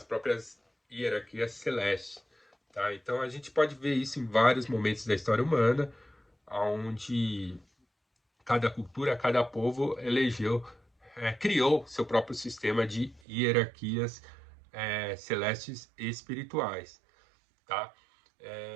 próprias hierarquias celestes, tá? Então a gente pode ver isso em vários momentos da história humana, onde cada cultura, cada povo criou seu próprio sistema de hierarquias celestes e espirituais, tá?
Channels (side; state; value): left; drops out; at 13.2 s